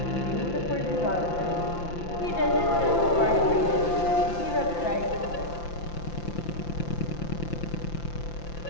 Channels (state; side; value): late; right; 5.8 ms